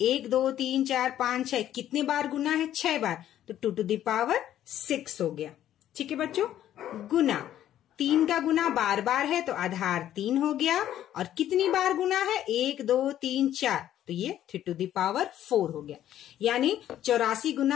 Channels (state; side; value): quieter; right; 11.8 dB